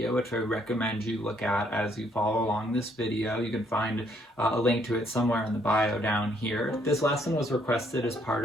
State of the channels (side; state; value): both; normal; correlation 0.68